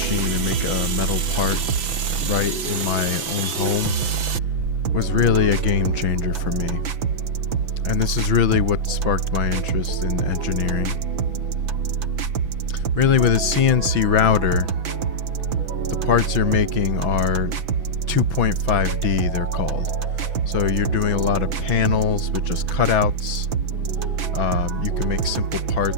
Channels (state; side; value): late; left; 6.0 ms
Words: and make a metal part right in my own home was really a game changer for me. And this is really what sparked my interest in engineering. Really, with a CNC router, the parts you're making are 2.5D, they're called. So you're doing a lot of panels with just cutouts. You can make simple